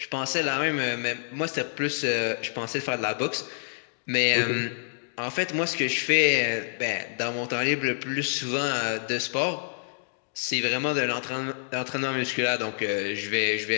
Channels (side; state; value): right; silent; digital silence